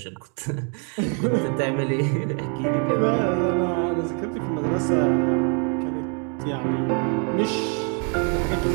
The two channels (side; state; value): left; quieter; 39.4 dB